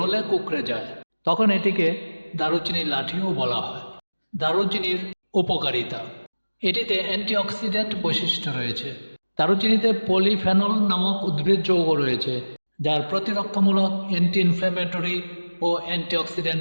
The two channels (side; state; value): both; inverted; correlation -1.00